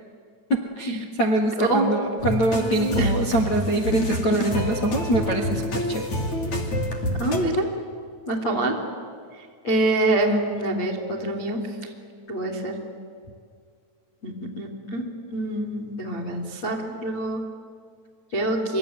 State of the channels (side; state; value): right; late; 9.1 ms